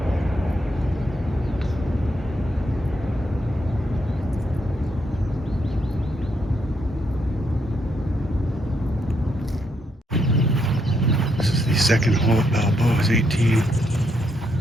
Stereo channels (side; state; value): both; normal; correlation 0.77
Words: This is the second hole at Balboa's 18.